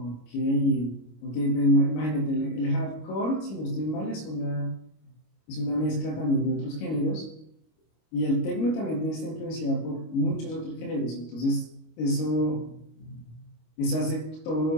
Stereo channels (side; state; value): right; late; 25 ms